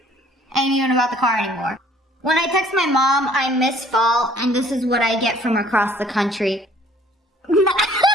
even about the car anymore. When I text my mom, I miss fall, and this is what I get from across the country.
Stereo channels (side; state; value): both; normal; correlation 0.56